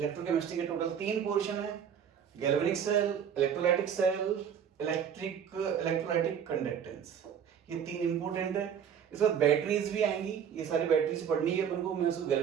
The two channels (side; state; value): left; quieter; 8.1 dB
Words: के टोटल 3 पोर्शन है, galvanic cell, electrolytic cell, electrolytic conductance. ये 3 इंपॉर्टेंट है। इस बाद बैटरीज भी आएंगी, ये सारी बैटरीज पढ़नी है अपन को, मैं उसको